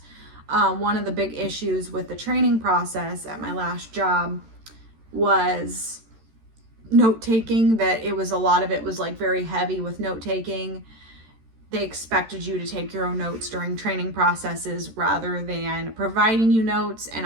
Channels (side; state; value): left; late; 13 ms